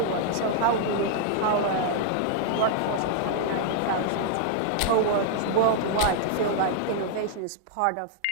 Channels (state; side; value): different; both; correlation -0.01